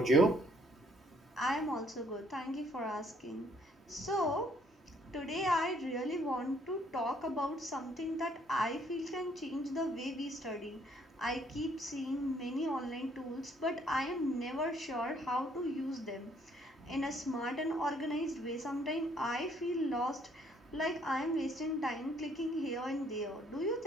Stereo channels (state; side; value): normal; both; correlation 0.65